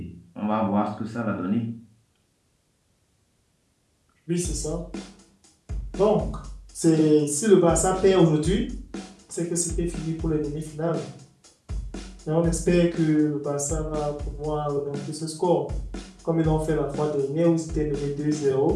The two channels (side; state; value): both; identical; correlation 1.00